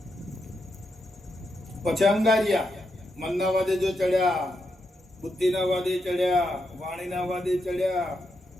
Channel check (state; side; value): normal; both; correlation 0.83